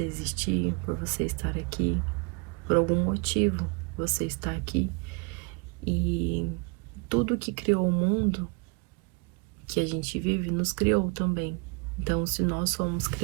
existir, por você estar aqui, por algum motivo você está aqui. E tudo que criou o mundo que a gente vive nos criou também. Então, se nós fomos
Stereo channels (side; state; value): left; quieter; 32.0 dB